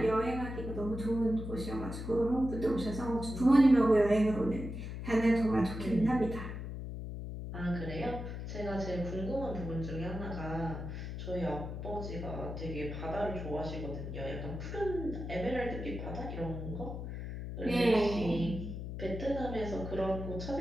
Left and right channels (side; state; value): left; noise; hum, 6 dB below the sound